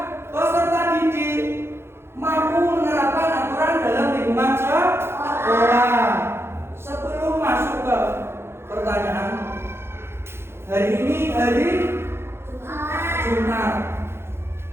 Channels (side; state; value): left; late; 0.12 ms